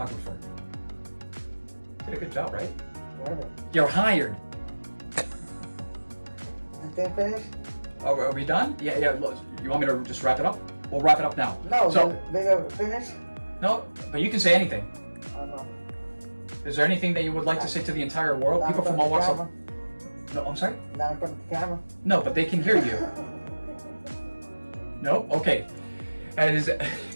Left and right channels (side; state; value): both; inverted; correlation -1.00